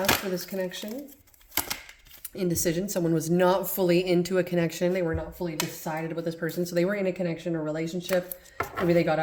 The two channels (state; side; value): identical; both; correlation 1.00